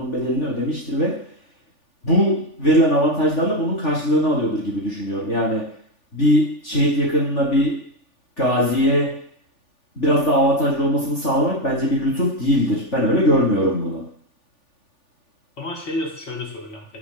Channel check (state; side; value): late; right; 3.4 ms